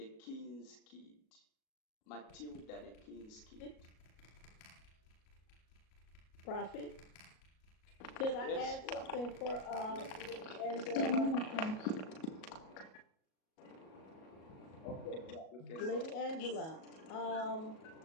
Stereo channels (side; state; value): right; late; 37 ms